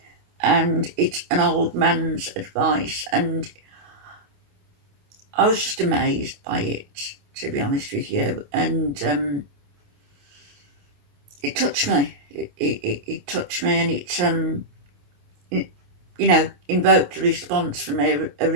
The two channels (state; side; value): late; left; 28 ms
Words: and it's an old man's advice, and I was just amazed by it, to be honest with you, and it touched me. It touched me, and it invoked a response from a